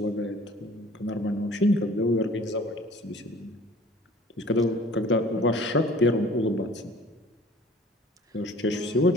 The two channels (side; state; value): both; normal; correlation 0.50